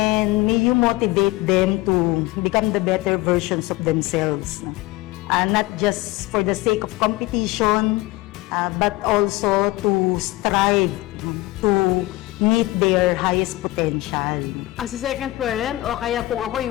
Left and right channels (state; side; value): quieter; right; 19.0 dB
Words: may you motivate them to become the better versions of themselves. Not just for the sake of competition, but also to strive to meet their highest potential. As a second parent, o kaya kung ako